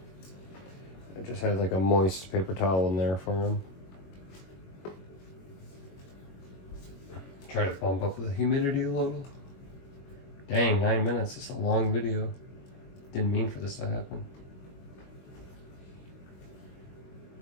I just had like a moist paper towel in there for him. Try to bump up the humidity a little. Dang, 9 minutes. It's a long video. Didn't mean for this to happen.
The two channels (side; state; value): right; late; 21 ms